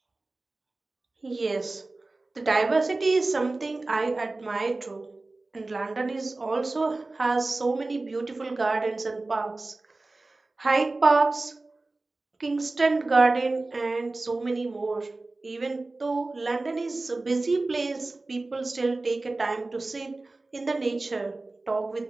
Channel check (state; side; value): quieter; left; 3.2 dB